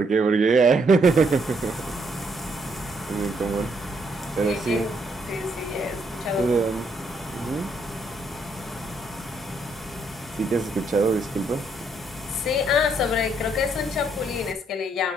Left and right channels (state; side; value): normal; both; correlation 0.73